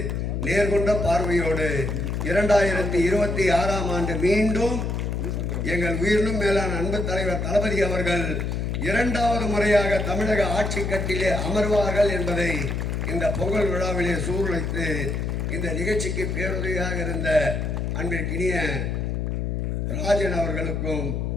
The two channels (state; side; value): noise; left; hum, 1 dB below the sound